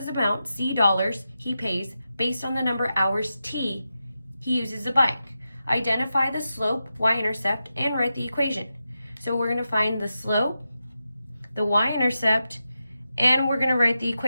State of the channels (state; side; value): inverted; both; correlation -0.89